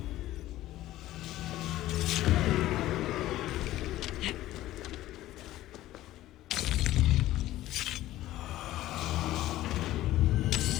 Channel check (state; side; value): quieter; right; 15.2 dB